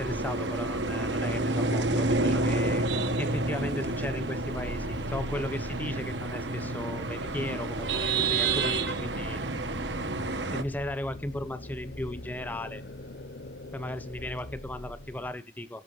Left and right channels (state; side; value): normal; both; correlation 0.42